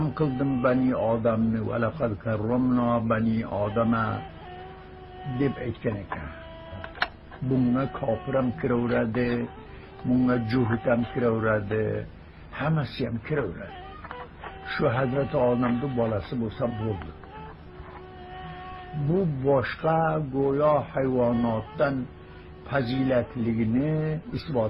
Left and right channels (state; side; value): identical; both; correlation 1.00